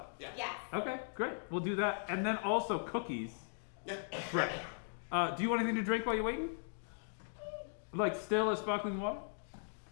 Yeah. Yes. Okay, great. We'll do that. And then also cookies. Yeah. Right. Do you want anything to drink while you're waiting? Like still as sparkling water?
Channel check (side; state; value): right; silent; digital silence